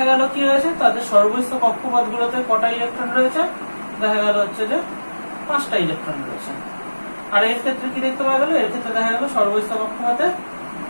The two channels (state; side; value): inverted; both; correlation -1.00